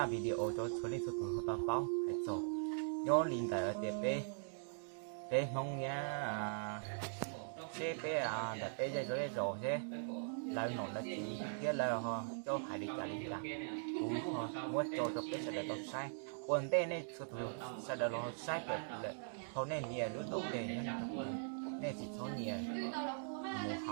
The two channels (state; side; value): silent; left; digital silence